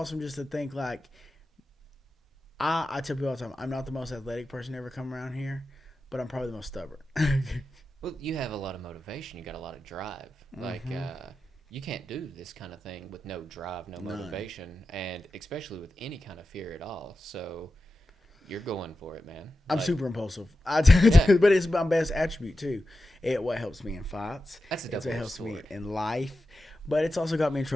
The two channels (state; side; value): normal; both; correlation 0.92